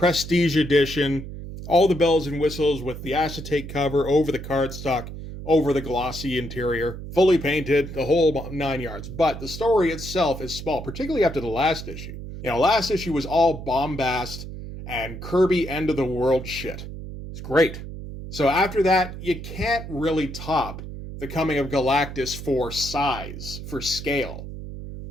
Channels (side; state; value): right; noise; hum, 10 dB below the sound